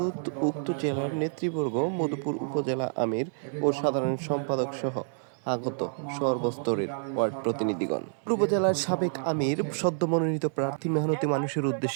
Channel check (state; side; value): silent; left; digital silence